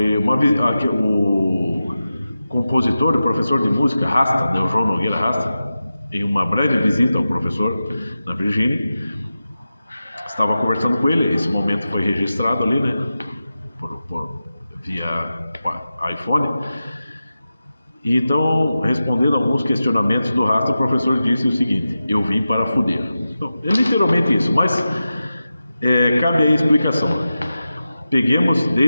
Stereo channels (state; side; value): inverted; both; correlation -0.93